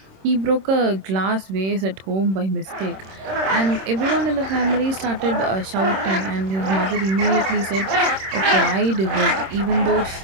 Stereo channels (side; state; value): left; late; 26 ms